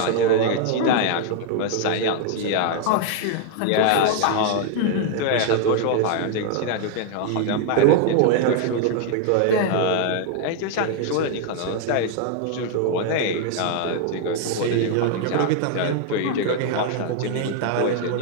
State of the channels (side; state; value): both; different; correlation 0.00